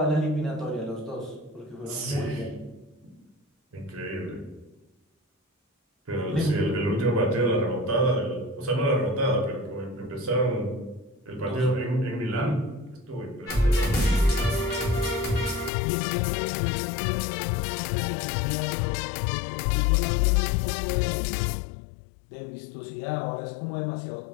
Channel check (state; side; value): drops out; right; at 15.7 s